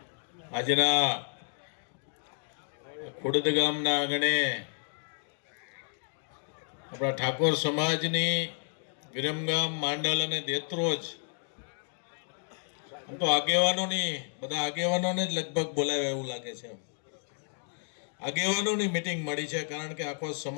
આજના ખુડદ ગામના આંગણે આપણા ઠાકોર સમાજની વિરમગામ, માંડલ અને દેત્રોજ આમ તો આગેવાનોની બધા આગેવાનોને જ લગભગ બોલાવ્યા એવું લાગે છે. આગેવાનોની મીટિંગ મળી છે, કારણ કે આખો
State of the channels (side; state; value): right; silent; 57 dB below the other